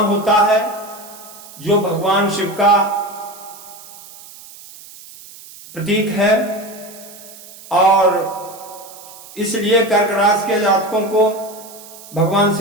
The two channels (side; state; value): right; noise; hiss, 18 dB below the sound